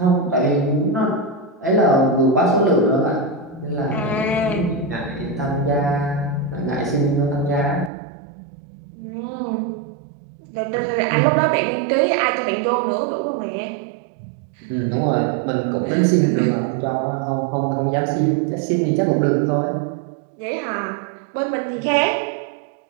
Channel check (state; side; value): drops out; left; at 7.9 s